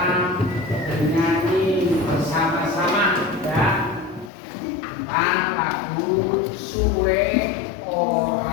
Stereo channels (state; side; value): drops out; right; at 4.3 s